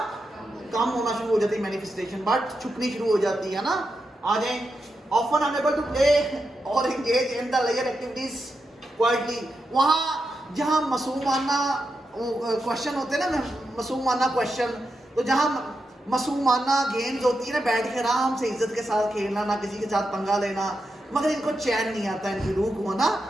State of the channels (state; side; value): normal; both; correlation 0.87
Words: कम होना शुरू हो जाती है मैनिफेस्टेशन, बट छुपनी शुरू हो जाती है ना। आ जाए ऑफन अनएबल टू प्ले और engage in the layer activities quietly. वहाँ जहाँ मासूमाना क्वेश्चन होते हैं ना, मासूमाना क्वेश्चन, तो जहाँ मासूमाना गेम्स होती है ना, बैठ के आराम से इज्जत के साथ खेलना, ना किसी के साथ पंगा लेना, मगर इनको चैन नहीं आता, इनकी रूह को ना,